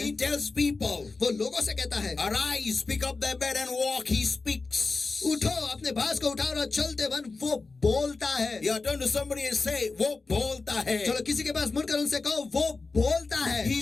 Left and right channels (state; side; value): quieter; right; 3.9 dB